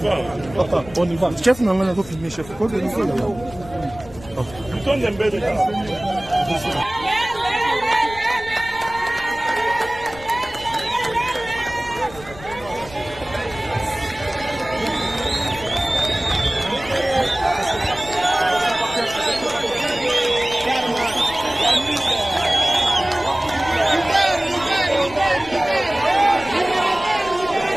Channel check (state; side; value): noise; left; rumble, 18 dB below the sound